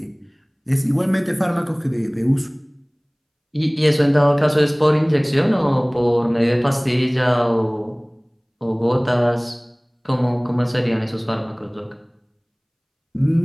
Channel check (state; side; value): identical; both; correlation 1.00